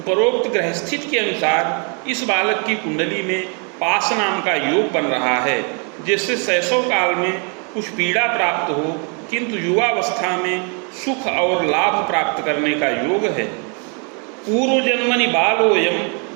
ग्रहस्थित के अनुसार इस बालक की कुंडली में पास नाम का योग बन रहा है, जिससे शैशव काल में कुछ पीड़ा प्राप्त हो, किंतु युवावस्था में सुख और लाभ प्राप्त करने का योग है। पूर्व जन्मनि बालोयम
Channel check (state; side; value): quieter; left; 37.8 dB